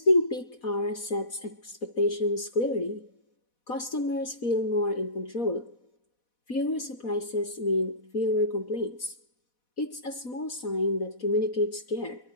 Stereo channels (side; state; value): right; late; 4.1 ms